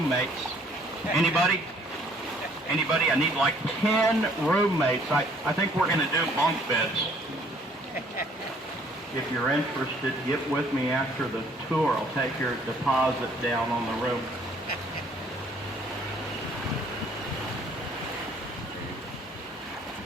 Anybody? Anybody? I need like 10 roommates. I think we're going to do bunk beds. If you're interested, get with me after the tour. I'll take your deposit down on the room.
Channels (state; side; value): normal; both; correlation 0.60